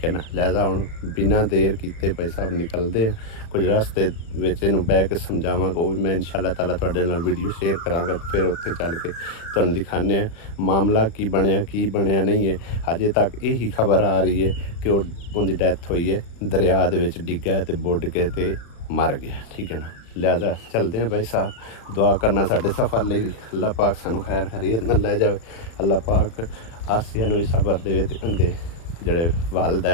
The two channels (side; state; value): right; late; 35 ms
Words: ਹੈ ਨਾ। ਲਿਹਾਜ਼ਾ ਹੁਣ ਬਿਨਾਂ ਦੇਰ ਕੀਤੇ ਭਾਈ ਸਾਹਿਬ ਨਿਕਲਦੇ ਆ, ਕੁਝ ਰਸਤੇ ਵਿੱਚ ਇਹਨੂੰ ਬਹਿ ਕੇ ਸਮਝਾਵਾਂਗਾ, ਉਹ ਵੀ ਮੈਂ ਇਨਸ਼ਾਅੱਲਾ ਤਾਲਾ ਤੁਹਾਡੇ ਨਾਲ ਵੀਡੀਓ ਸ਼ੇਅਰ ਕਰਾਂਗਾ। ਫਿਰ ਉੱਥੇ ਚੱਲ ਕੇ ਤੁਹਾਨੂੰ ਦਿਖਾਉਂਦੇ ਆ ਮਾਮਲਾ ਕੀ ਬਣਿਆ ਨਹੀਂ ਹੈ। ਅਜੇ ਤੱਕ ਇਹੀ ਖਬਰ ਆ ਰਹੀ ਹੈ ਕਿ ਉਹਦੀ ਡੈਥ ਹੋਈ ਹੈ, ਦਰਿਆ ਦੇ ਵਿੱਚ ਡਿੱਗਾ ਤੇ ਬੁੱਢ ਕੇ ਤੇ ਮਰ ਗਿਆ, ਠੀਕ ਹੈ ਨਾ। ਲਿਹਾਜ਼ਾ ਚਲਦੇ हैं भाई साहब, दुआ करना साढ़े सफ़र ਲਈ ਵੀ ਅੱਲਾਹ ਪਾਕ ਸਾਨੂੰ ਖੈਰ ਖੈਰੀਅਤ ਨਾਲ ਲੈ ਜਾਵੇ। ਅੱਲਾਹ ਪਾਕ ਆਸੀਆ ਨੂੰ ਵੀ ਸਬਰ ਦੇਵੇ ਤੇ ਉਹਦੇ ਜਿਹੜੇ